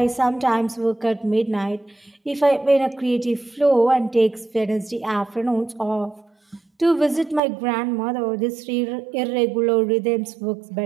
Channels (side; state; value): left; drops out; at 7.4 s